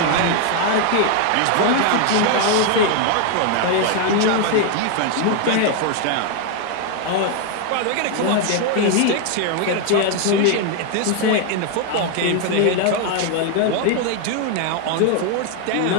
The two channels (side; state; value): both; different; correlation 0.00